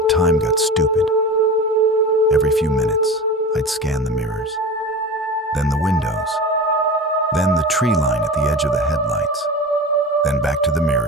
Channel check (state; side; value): normal; both; correlation 0.31